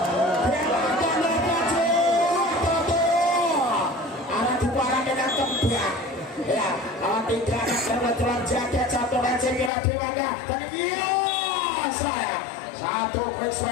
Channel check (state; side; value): drops out; right; at 9.7 s